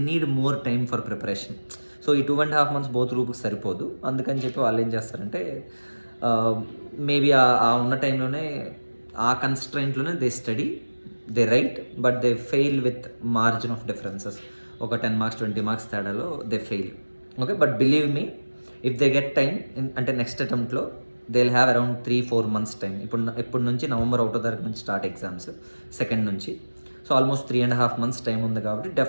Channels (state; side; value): inverted; both; correlation -1.00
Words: need more time for preparation. So ఈ 2.5 months బోత్ గ్రూప్కి సరిపోదు. అందుకని చెప్పి వాళ్ళు ఏం చేస్తారంటే మేబీ ఆ ఉన్న టైంలోనే ఆ కన్స్ట్రైంట్లోనే they study, they right, but they fail with margin of differences. ఒక 10 marks 20 marks తేడాలో they fail. Okay, but believe me, if they get time అంటే నెక్స్ట్ అటెంప్ట్లో they will have around 3-4 months టైం. ఇప్పుడు నుంచి November 1వ తారీఖు నుంచి స్టార్ట్ ఎగ్జామ్స్, 2nd నుంచి. సో ఆల్మోస్ట్ 3.5 months టైం ఉంది కాబట్టి